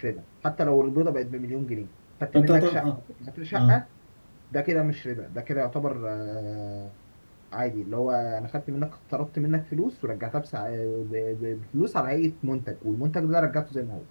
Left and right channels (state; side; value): inverted; both; correlation -1.00